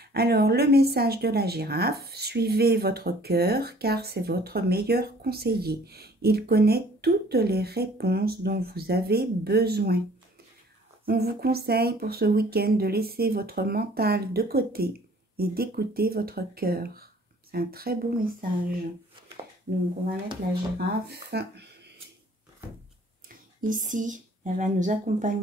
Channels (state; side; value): normal; both; correlation 0.55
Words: Alors, le message de la girafe, suivez votre cœur car c'est votre meilleur conseiller. Il connaît toutes les réponses dont vous avez besoin. On vous conseille pour ce week-end de laisser votre mental de côté et d'écouter votre cœur. C'est un très beau message. Donc, on va mettre la girafe ici. Elle va nous